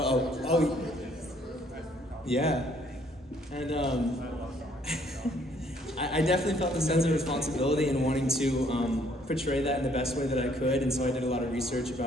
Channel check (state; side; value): normal; both; correlation 0.64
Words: yeah. And I definitely felt the sense of responsibility and wanting to portray that in the best way that I could, and so I did a lot of research